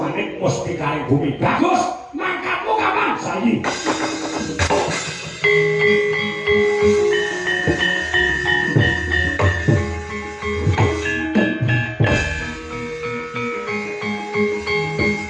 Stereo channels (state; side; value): identical; both; correlation 1.00